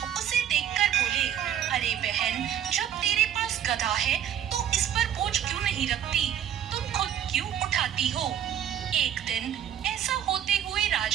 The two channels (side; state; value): left; quieter; 10.0 dB